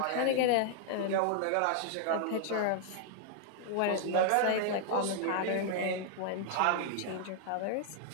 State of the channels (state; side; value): different; both; correlation 0.00